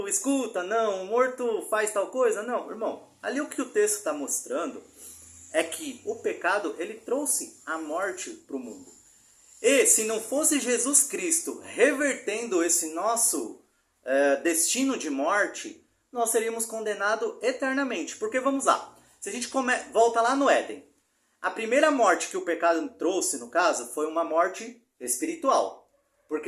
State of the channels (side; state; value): both; identical; correlation 1.00